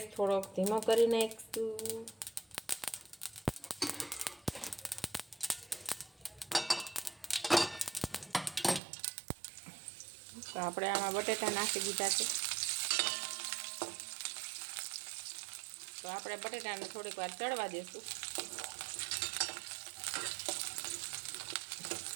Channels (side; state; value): left; drops out; at 8.8 s